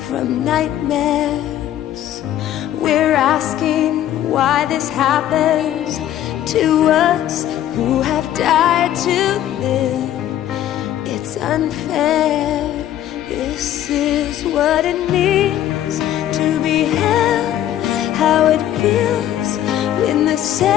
from nightmares? We're asking why this happens to us who have died to live. It's unfair. This is what it means to be held, how it feels when the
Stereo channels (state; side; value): quieter; right; 11.9 dB